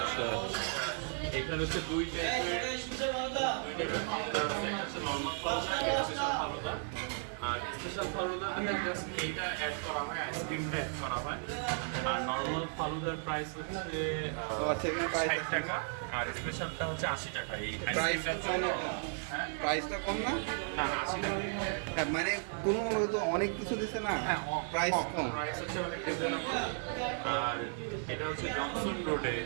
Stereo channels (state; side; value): silent; left; 54 dB below the other